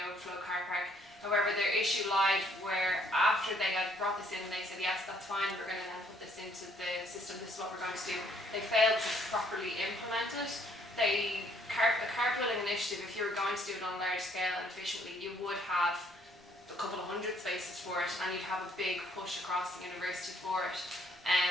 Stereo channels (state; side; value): normal; both; correlation 0.65